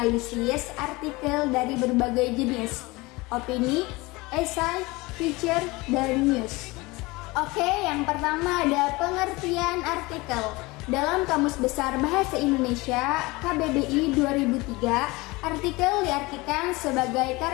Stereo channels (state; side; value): quieter; right; 22.9 dB